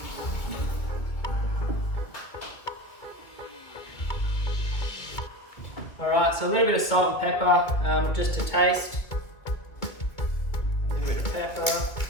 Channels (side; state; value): right; late; 2.0 ms